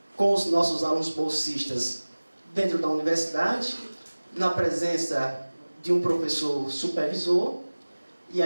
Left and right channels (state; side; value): inverted; both; correlation -1.00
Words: com os nossos alunos bolsistas dentro da universidade, na presença de um professor supervisor, e